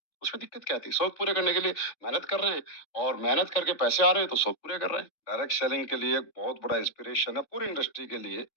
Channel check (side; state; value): right; late; 3.7 ms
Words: उसमें दिक्कत क्या थी? शौक पूरे करने के लिए मेहनत कर रहे हैं और मेहनत करके पैसे आ रहे हैं, तो शौक पूरे कर रहे हैं। डायरेक्ट सेलिंग के लिए एक बहुत बड़ा इंस्पिरेशन है पूरी इंडस्ट्री के लिए